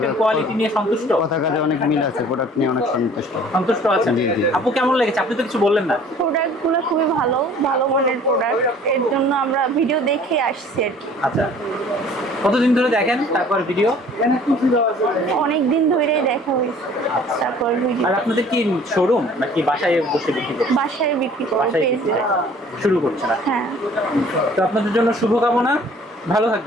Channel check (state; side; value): normal; both; correlation 0.51